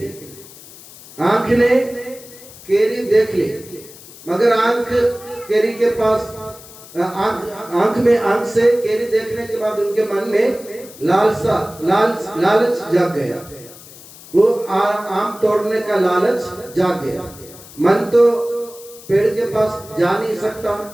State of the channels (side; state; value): left; noise; hiss, 19 dB below the sound